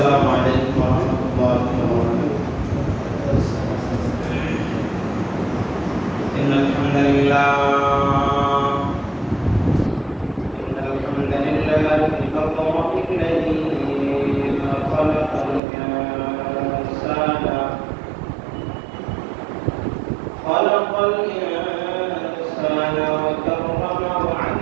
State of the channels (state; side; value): drops out; left; at 15.6 s